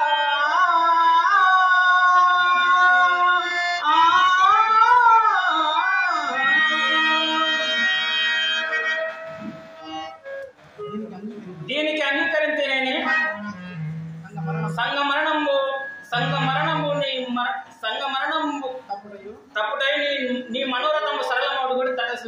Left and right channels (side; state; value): both; identical; correlation 1.00